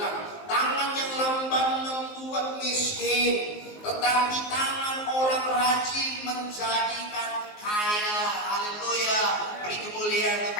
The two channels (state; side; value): late; right; 19 ms